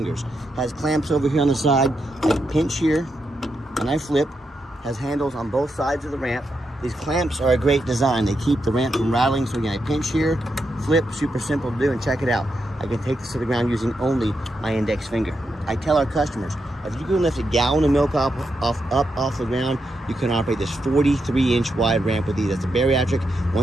Has clamps over here on the side. I pinch here, and I flip. Has handles on both sides of the ramp. These clamps are a great design. They keep the ramp from rattling. So again, I pinch here, flip, super simple to do, and check it out. I can take this to the ground using only my index finger. I tell our customers, if you can lift a gallon of milk up off the ground, you can operate this 43-inch wide ramp with these. That's a bariatric,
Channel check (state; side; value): normal; both; correlation 0.84